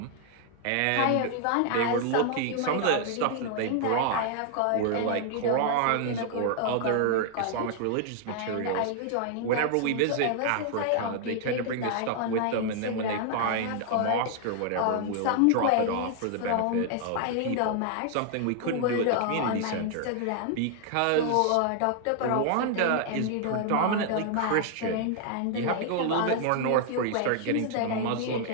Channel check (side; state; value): both; different; correlation 0.00